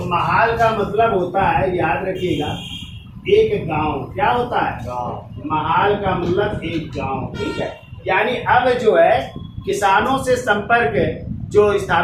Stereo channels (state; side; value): identical; both; correlation 1.00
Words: महाल का मतलब होता है, याद रखिएगा, एक गांव। क्या होता है? गांव। महाल का मतलब एक गांव। ठीक है। यानी अब जो है किसानों से संपर्क जो